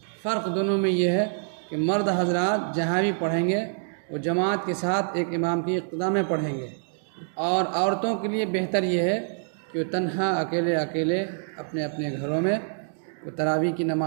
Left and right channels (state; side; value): silent; left; digital silence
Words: فرق دونوں میں یہ ہے کہ مرد حضرات جہاں بھی پڑھیں گے وہ جماعت کے ساتھ ایک امام کی اقتداء میں پڑھیں گے، اور عورتوں کے لیے بہتر یہ ہے کہ وہ تنہا اکیلے اپنے اپنے گھروں میں وہ تراویح کی